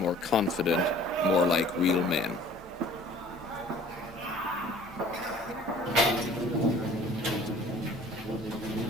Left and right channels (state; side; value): normal; both; correlation 0.50